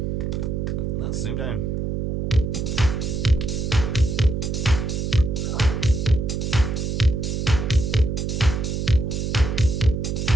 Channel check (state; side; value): noise; right; hum, 1 dB below the sound